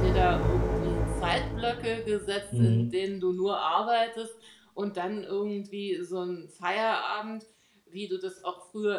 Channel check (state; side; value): identical; both; correlation 1.00